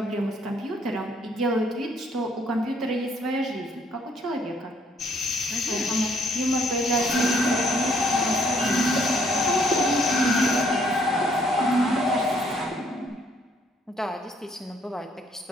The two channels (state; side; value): normal; both; correlation 0.66